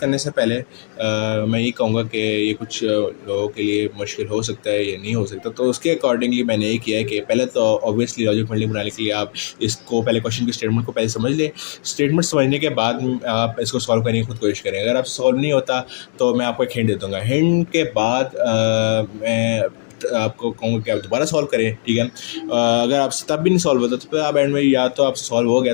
से पहले मैं ये कहूँगा कि ये कुछ लोगों के लिए मुश्किल हो सकता है या नहीं हो सकता, तो उसके अकॉर्डिंगली मैंने ये किया है कि पहले तो ऑब्वियसली लॉजिक बिल्डिंग बनाने के लिए आप इसको पहले क्वेश्चन की स्टेटमेंट को पहले समझ लें। स्टेटमेंट समझने के बाद आप इसको सॉल्व करने की खुद कोशिश करें। अगर आप सॉल्व नहीं होता तो मैं आपको एक हिंट दे दूँगा। हिंट के बाद मैं आपको कहूँगा कि आप दोबारा सॉल्व करें, ठीक है। अगर आपसे तब भी नहीं सॉल्व होता तो फिर आप एंड में या तो आपसे सॉल्व हो गया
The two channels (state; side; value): silent; right; digital silence